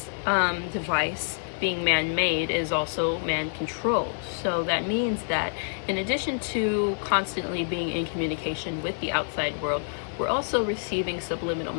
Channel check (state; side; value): silent; right; 60 dB below the other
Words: device, being man-made, is also man-controlled. So that means that in addition to constantly being in communication with the outside world, we're also receiving subliminal